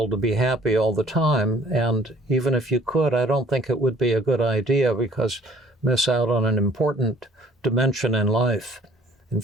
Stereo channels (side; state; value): both; normal; correlation 0.57